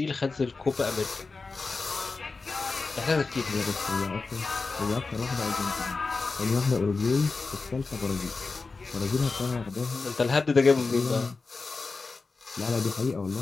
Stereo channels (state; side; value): quieter; right; 4.1 dB